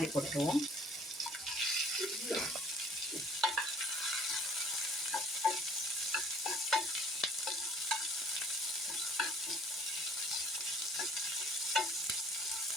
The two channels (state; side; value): normal; both; correlation 0.54